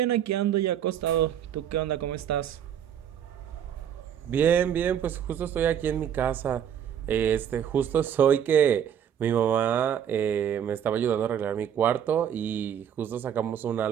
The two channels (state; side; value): quieter; left; 9.1 dB